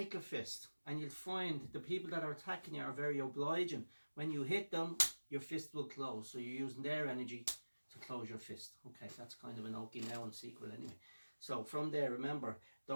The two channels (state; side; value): inverted; both; correlation -1.00